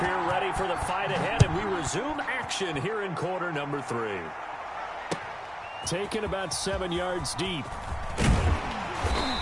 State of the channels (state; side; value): identical; both; correlation 1.00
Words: ready for the fight ahead, and we resume action here in quarter number 3. Taken about 7 yards deep.